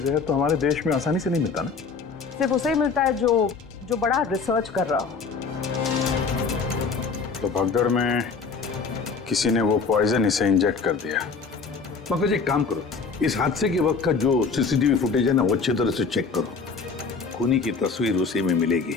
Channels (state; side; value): quieter; right; 4.9 dB